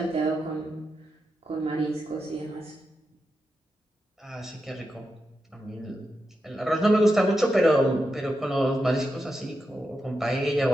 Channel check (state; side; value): normal; both; correlation 0.88